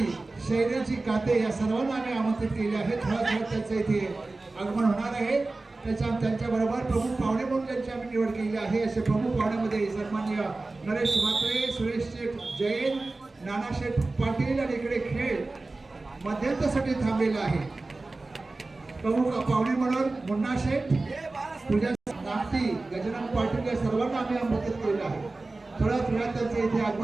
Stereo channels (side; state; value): left; quieter; 3.3 dB